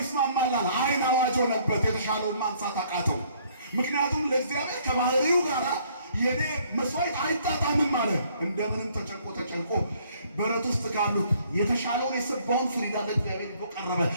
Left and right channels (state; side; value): inverted; both; correlation -0.62